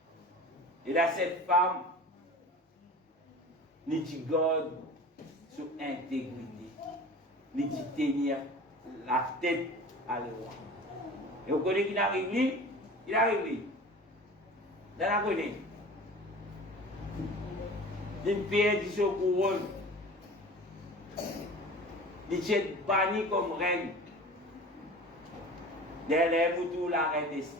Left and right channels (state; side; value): normal; both; correlation 0.39